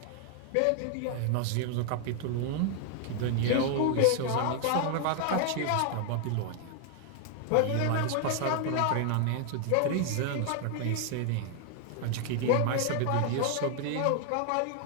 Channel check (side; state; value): both; different; correlation 0.00